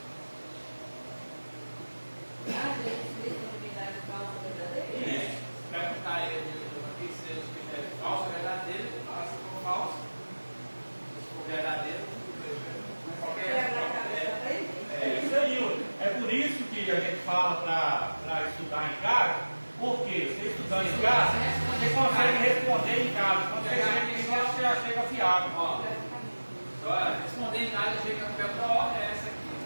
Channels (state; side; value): inverted; both; correlation -1.00